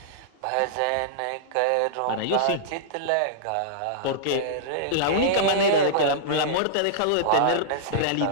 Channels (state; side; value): different; both; correlation -0.02